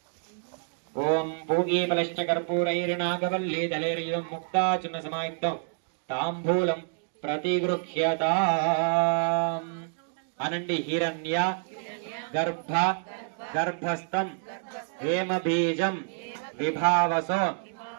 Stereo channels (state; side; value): silent; left; digital silence